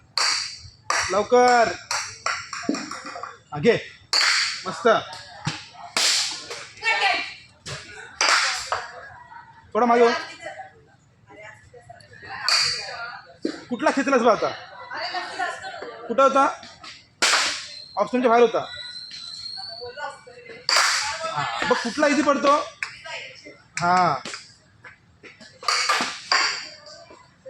लवकर घे मस्त थोडा मागे कुठला खेचलास बा आता कुठं होता ऑप्शनच्या बाहेर होता बघ कुठला इझी पडतो हा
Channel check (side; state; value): both; identical; correlation 1.00